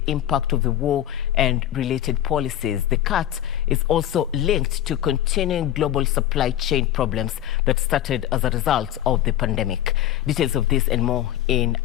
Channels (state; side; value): quieter; right; 12.2 dB